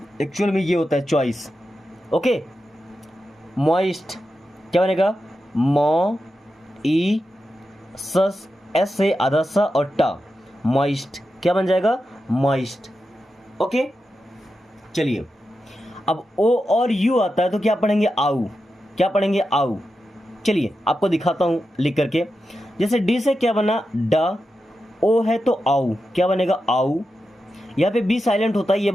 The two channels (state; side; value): normal; both; correlation 0.89